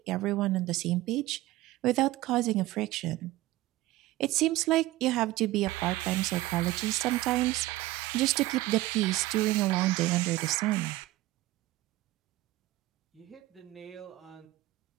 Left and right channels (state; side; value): quieter; left; 17.3 dB